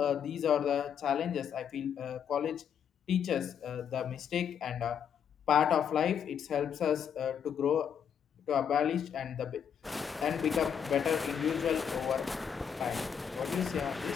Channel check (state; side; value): quieter; right; 7.9 dB